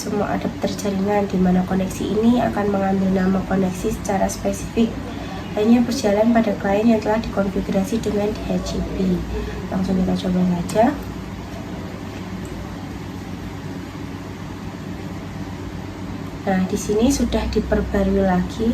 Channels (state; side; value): identical; both; correlation 1.00